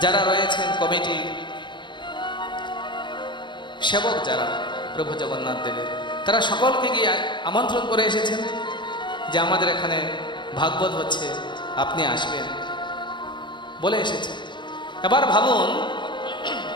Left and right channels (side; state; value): right; late; 0.23 ms